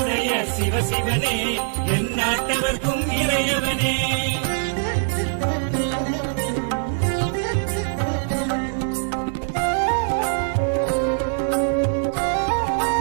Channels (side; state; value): left; silent; 64 dB below the other